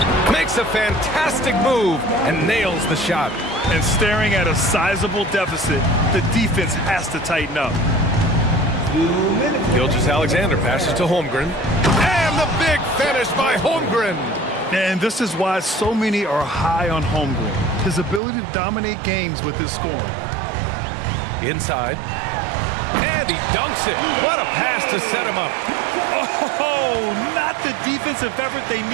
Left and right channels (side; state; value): left; drops out; at 18.2 s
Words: makes a fantastic move, and nails the shot. And staring at a sizable deficit, the defense has to tighten up. Gilgeous-Alexander passes to Holmgren. And the big finish by Holmgren. And this is why so many are high on Holmgren. His ability to dominate games with his scoring. Inside. And he dunks it. What a pass to set him up. Oh, not the defensive effort they